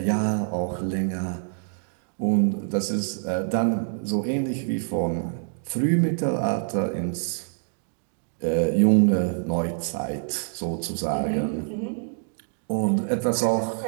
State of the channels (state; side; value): silent; left; digital silence